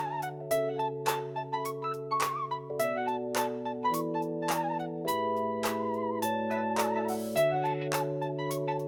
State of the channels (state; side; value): identical; both; correlation 1.00